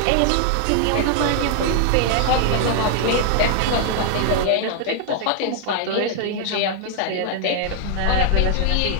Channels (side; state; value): both; different; correlation 0.00